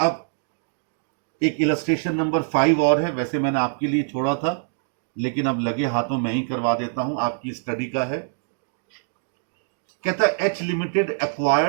अब एक इलस्ट्रेशन नंबर 5 और है, वैसे मैंने आपके लिए छोड़ा था, लेकिन अब लगे हाथों में ही करवा देता हूं, आपकी स्टडी का है। कहता है H limited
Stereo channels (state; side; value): silent; left; digital silence